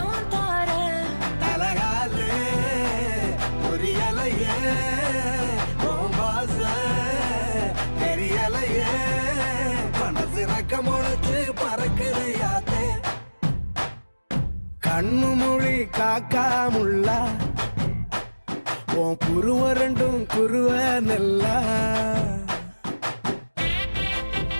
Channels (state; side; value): inverted; both; correlation -1.00